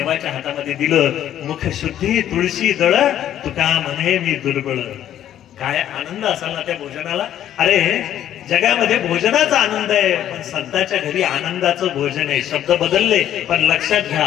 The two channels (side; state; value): right; quieter; 11.3 dB